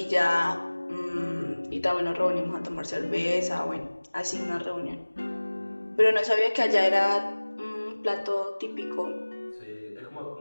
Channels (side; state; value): both; inverted; correlation -1.00